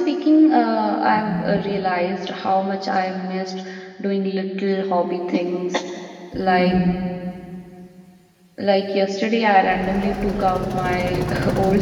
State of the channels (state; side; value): identical; both; correlation 1.00